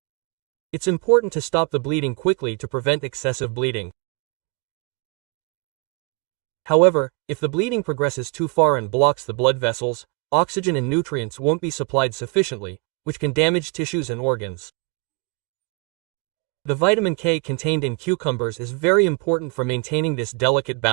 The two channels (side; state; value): left; quieter; 29.4 dB